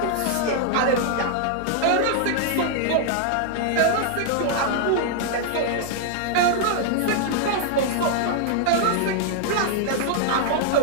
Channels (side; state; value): both; different; correlation 0.00